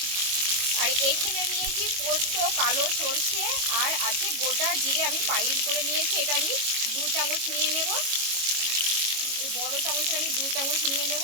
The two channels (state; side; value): late; left; 22 ms